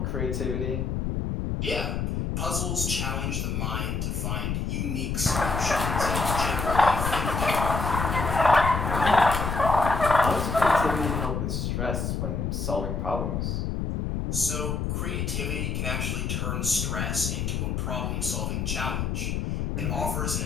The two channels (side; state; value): left; noise; rumble, 1 dB below the sound